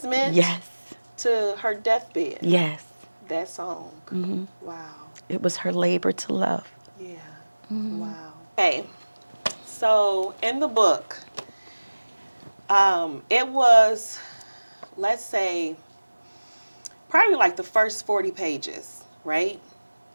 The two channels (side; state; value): both; inverted; correlation -1.00